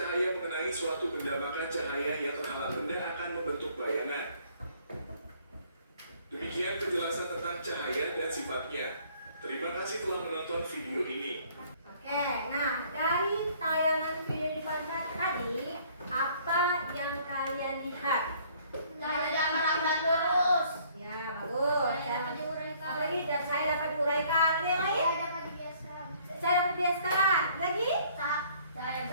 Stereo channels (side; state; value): both; inverted; correlation -0.60